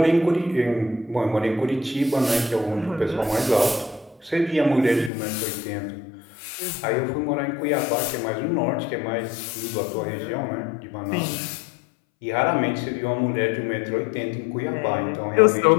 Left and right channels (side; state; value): right; drops out; at 5.1 s